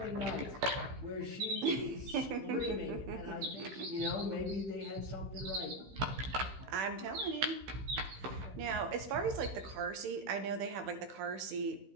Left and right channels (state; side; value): late; left; 15 ms